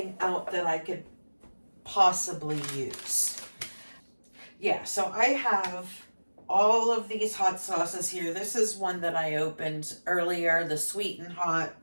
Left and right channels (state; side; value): inverted; both; correlation -1.00